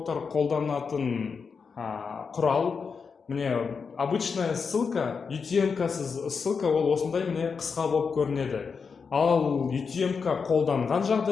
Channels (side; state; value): right; quieter; 5.5 dB